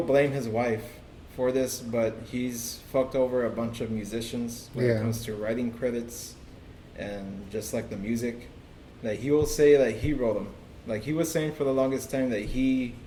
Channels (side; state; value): both; identical; correlation 1.00